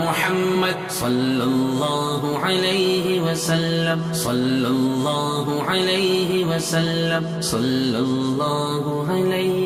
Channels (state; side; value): identical; both; correlation 1.00